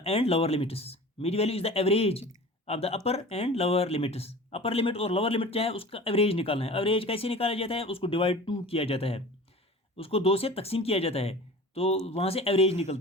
and lower limits. Mid value is the average of the upper and lower limits. Upper limit और lower limit क्या है, उसका average निकालना है। Average कैसे निकाला जाता है, उसको डिवाइड 2 किया जाता है, उसको 2 से तकसीम किया जाता है, तो वहाँ से एवरेज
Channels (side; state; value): both; normal; correlation 0.39